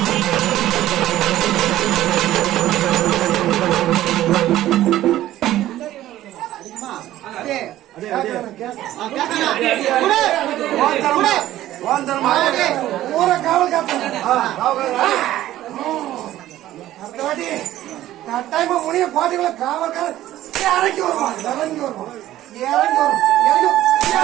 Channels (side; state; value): left; quieter; 14.0 dB